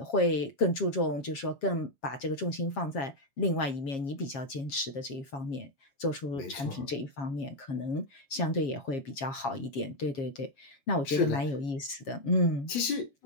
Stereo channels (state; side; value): late; right; 7.4 ms